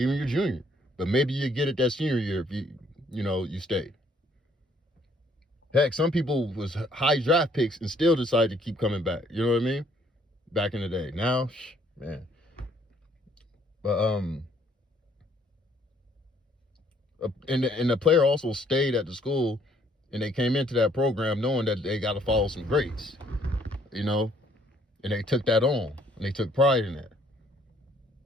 your junior, but maybe you get it that senior year if you stay. Heck, some people was high draft picks and still decide to keep coming back. You know what I mean? Back in the day. Now, man. But and the player also stayed at the school, and they came into that program knowing that they got to follow some grades, and they took that on, and they took pride in that,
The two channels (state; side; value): normal; both; correlation 0.65